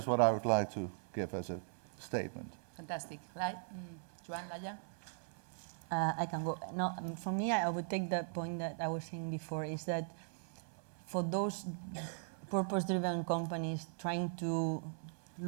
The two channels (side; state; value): left; silent; 51 dB below the other